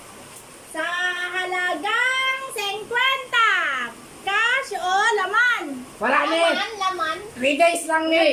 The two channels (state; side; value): identical; both; correlation 1.00